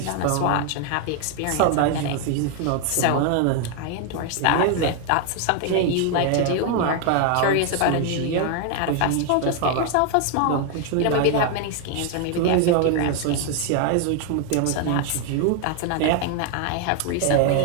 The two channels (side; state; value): both; different; correlation 0.00